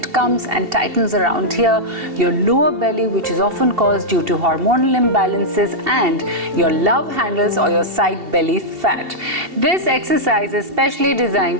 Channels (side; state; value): left; late; 2.7 ms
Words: comes and tightens around here, your lower belly, which is often caused due to hormonal imbalances, and your love handles or your side belly fat. This exercise is specially designed